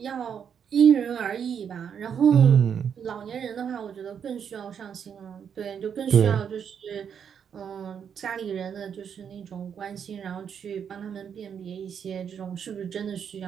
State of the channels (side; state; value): left; quieter; 7.7 dB